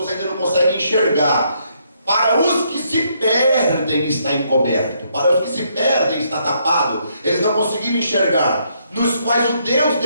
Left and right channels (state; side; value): inverted; both; correlation -0.73